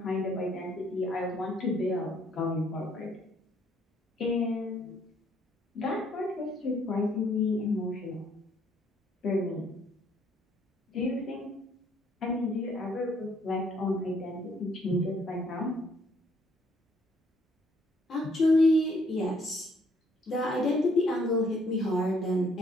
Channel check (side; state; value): both; normal; correlation 0.66